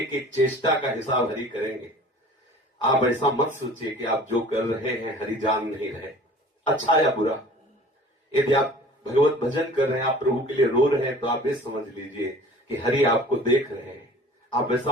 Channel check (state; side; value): normal; both; correlation 0.46